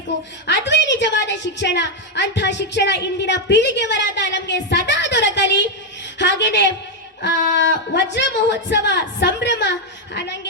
ಅದುವೇ ನಿಜವಾದ ಶಿಕ್ಷಣ. ಅಂತಹ ಶಿಕ್ಷಣ ಇಂದಿನ ಪೀಳಿಗೆವರಾದ ನಮಗೆ ಸದಾ ದೊರಕಲಿ. ಹಾಗೇನೆ ವಜ್ರ ಮಹೋತ್ಸವ ಸಂಭ್ರಮ,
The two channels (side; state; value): both; normal; correlation 0.02